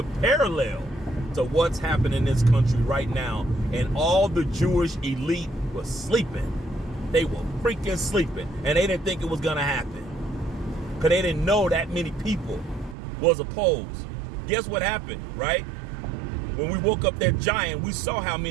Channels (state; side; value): drops out; left; at 13.0 s